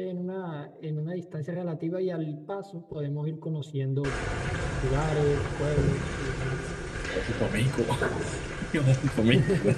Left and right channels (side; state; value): both; identical; correlation 1.00